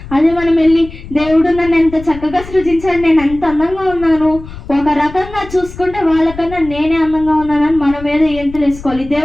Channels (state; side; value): noise; left; rumble, 15 dB below the sound